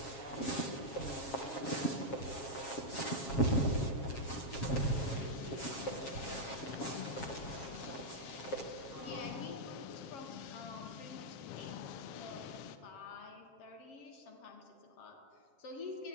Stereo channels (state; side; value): late; right; 7.4 ms